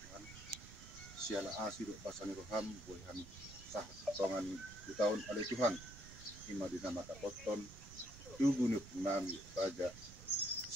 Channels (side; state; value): right; noise; rumble, 15 dB below the sound